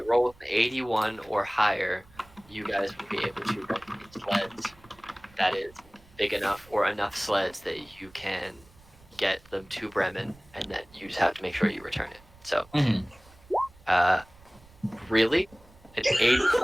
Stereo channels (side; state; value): right; noise; rumble, 26 dB below the sound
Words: rolls an 81 or higher, you guys will be able to rent a sled that is big enough or enough sleds that you can get them to Bremen, and then you just have to make sure you return it. So, really, an